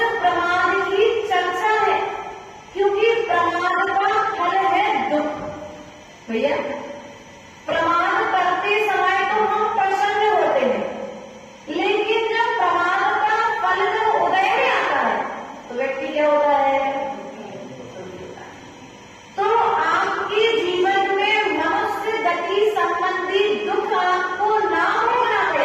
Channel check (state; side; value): identical; both; correlation 1.00